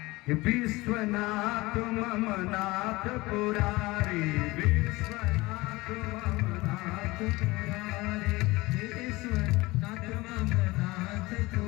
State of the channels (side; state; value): right; quieter; 21.3 dB